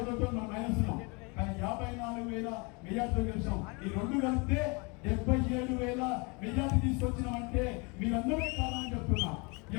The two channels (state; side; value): quieter; right; 30.2 dB